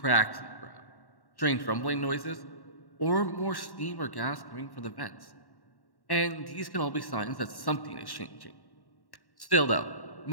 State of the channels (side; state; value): right; late; 1.1 ms